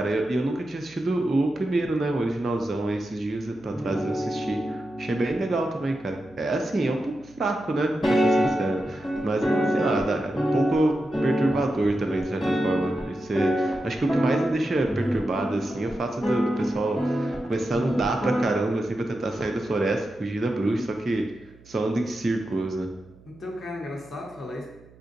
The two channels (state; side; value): noise; right; hum, 25 dB below the sound